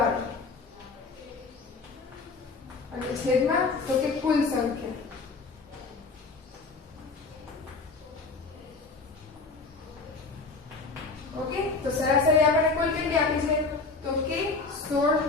અને છેદમાં તો કે કુલ સંખ્યા. ઓકે, તો સરાસરી આપણને કુલ કેટલી આપી છે? તો કે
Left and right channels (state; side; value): quieter; right; 4.1 dB